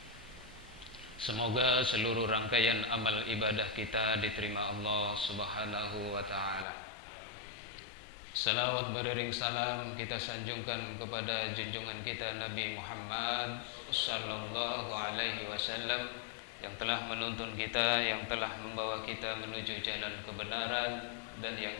Semoga seluruh rangkaian amal ibadah kita diterima Allah Subhanahu wa ta'ala. Salawat beriring salam kita sanjungkan kepada junjungan kita Nabi Muhammad sallallahu alaihi wasallam, yang telah menuntun kita, yang telah membawa kita menuju jalan kebenaran dan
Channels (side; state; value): right; drops out; at 6.7 s